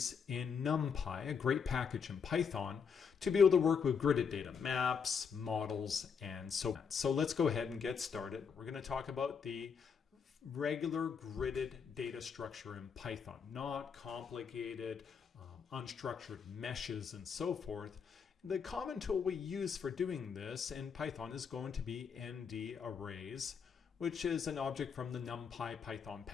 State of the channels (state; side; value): quieter; right; 6.4 dB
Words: in NumPy, a great package in Python, to be able to work with gridded data, maps, models, and so on. So let's go ahead and get started. We're going to talk about the regular gridded data structure in Python, not complicated, unstructured meshes and so forth. The common tool we use for doing this in Python is going to be ndarrays, which is an object from the NumPy Python